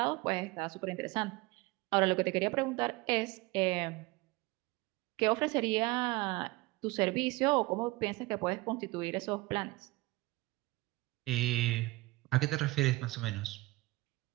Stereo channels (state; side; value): quieter; left; 21.4 dB